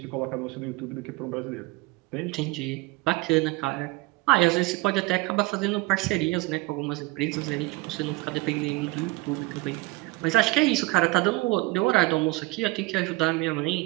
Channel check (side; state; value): left; quieter; 22.6 dB